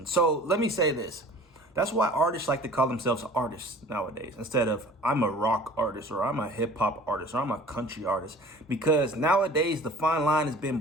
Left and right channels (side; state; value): both; normal; correlation 0.46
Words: So, let me say this. That's why artists like to call themselves artists nowadays, instead of I'm a rock artist, or I'm a hip-hop artist, or I'm a country artist. Because nowadays, the fine line has been